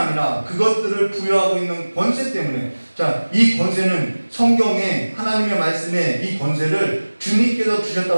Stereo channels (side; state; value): both; inverted; correlation -1.00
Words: 그것들을 부여하고 있는 권세 때문에 자, 이 권세는 성경에 하나님의 말씀에 이 권세를 주님께서